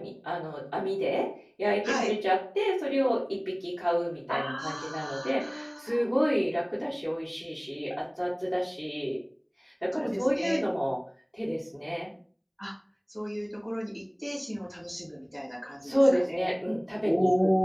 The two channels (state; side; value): identical; both; correlation 1.00